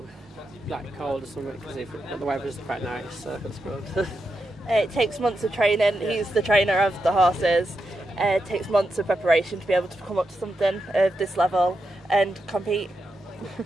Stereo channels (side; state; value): both; normal; correlation 0.86